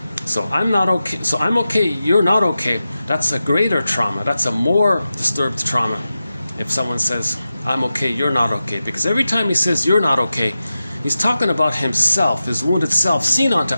So I'm not okay. So I'm okay, you're not okay. That's a greater trauma. That's a more disturbed trauma. If someone says, I'm okay, you're not okay. Because every time he says you're not okay, he's talking about himself, his wounded self, seen onto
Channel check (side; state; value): both; inverted; correlation -0.92